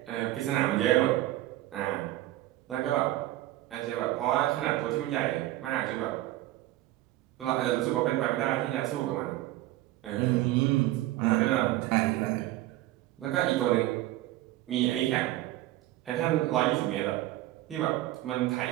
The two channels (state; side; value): quieter; left; 15.9 dB